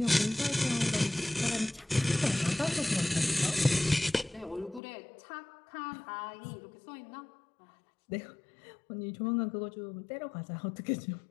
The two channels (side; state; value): right; drops out; at 4.8 s